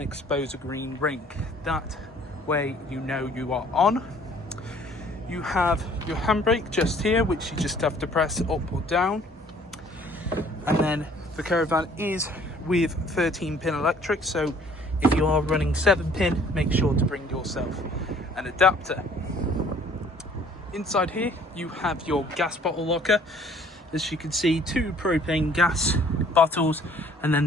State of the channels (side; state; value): both; normal; correlation 0.56